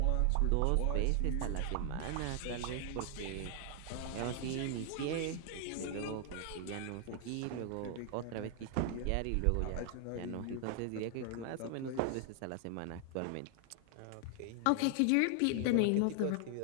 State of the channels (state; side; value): different; both; correlation 0.00